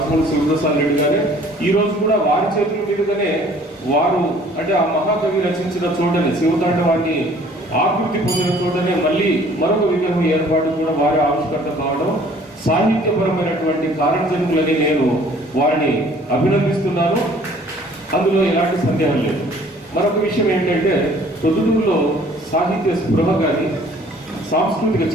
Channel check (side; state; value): both; normal; correlation 0.55